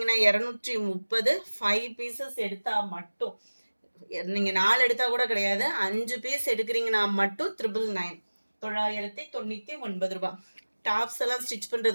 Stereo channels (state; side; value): inverted; both; correlation -1.00